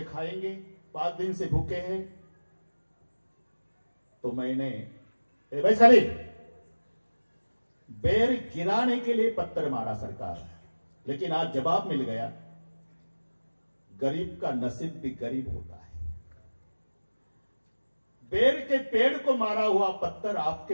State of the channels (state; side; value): inverted; both; correlation -1.00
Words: खाएंगे. 5 दिन से भूखे हैं. तो मैंने भाई खाली बेर गिराने के लिए पत्थर मारा सरकार. लेकिन आज जवाब मिल गया. गरीब का नसीब भी गरीब होता है. बेर के पेड़ को मारा हुआ पत्थर